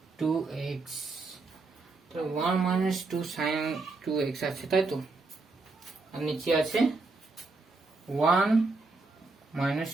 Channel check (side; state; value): left; quieter; 3.6 dB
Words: 2x। তো 1 minus 2 sin 2x আছে, তাই তো? আর নিচে আছে 1 minus